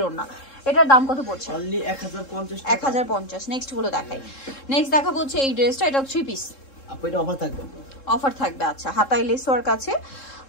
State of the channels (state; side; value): late; right; 3.7 ms